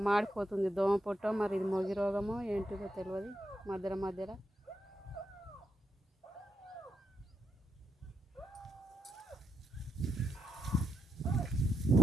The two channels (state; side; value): normal; both; correlation 0.79